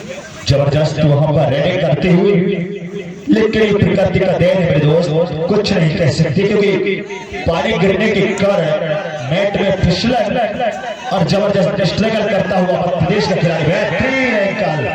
जबरदस्त वहां पर रेडिंग करते हुए लेकिन प्रकृति का देन है दोस्त कुछ नहीं कह सकते क्योंकि पानी गिरने के कारण नेट में फिसलन और जबरदस्त स्ट्रगल करता हुआ प्रदेश का खिलाड़ी बेहतरीन एंकल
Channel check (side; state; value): both; identical; correlation 1.00